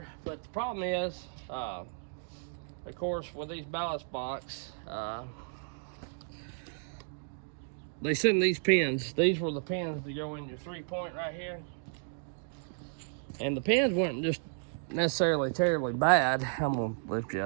But the problem is, of course, with these ballast box, they send these pins. These were the pins to go in your 3-point right here. And the pins weren't just necessarily terribly bad. I'm gonna lift you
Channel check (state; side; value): silent; left; digital silence